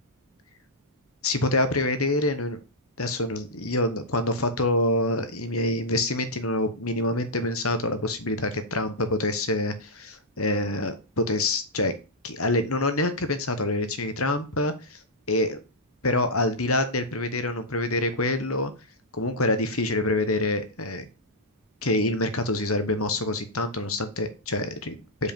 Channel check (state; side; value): normal; both; correlation -0.08